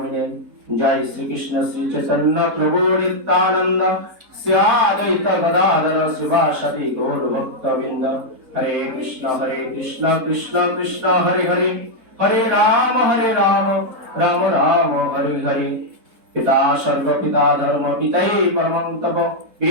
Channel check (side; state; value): left; late; 4.2 ms